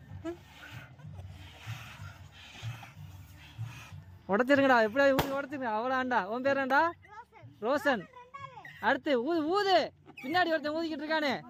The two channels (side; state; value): both; identical; correlation 1.00